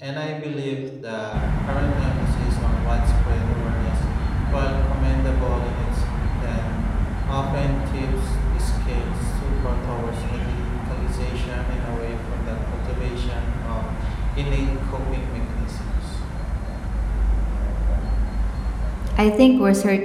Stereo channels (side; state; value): both; identical; correlation 1.00